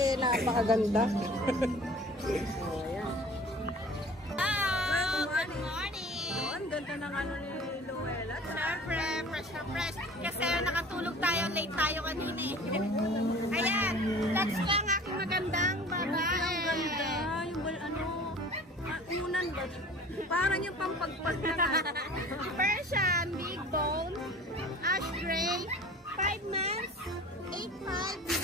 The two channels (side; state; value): both; normal; correlation 0.44